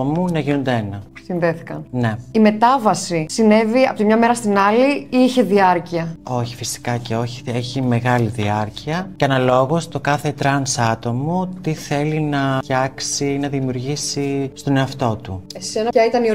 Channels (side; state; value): both; identical; correlation 1.00